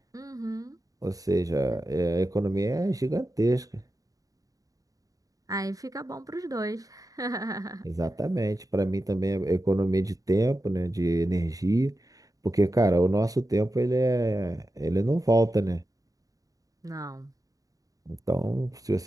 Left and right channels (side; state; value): left; late; 0.17 ms